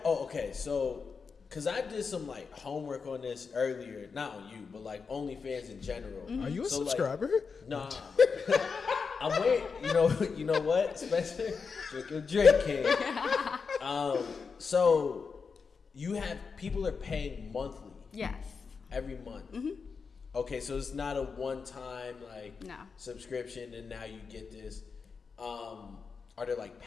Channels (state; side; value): quieter; right; 5.3 dB